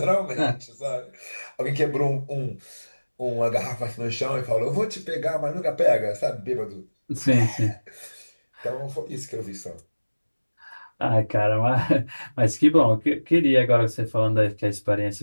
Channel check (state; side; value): inverted; both; correlation -1.00